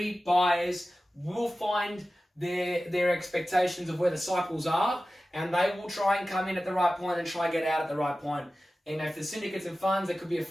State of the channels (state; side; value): normal; both; correlation 0.95